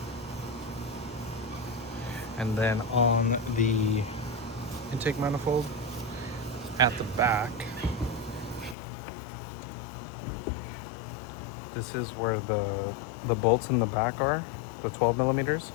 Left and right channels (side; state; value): right; drops out; at 8.8 s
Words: And then on the intake manifold at the back, this is where the bolts in the back are, the 12 millimeters.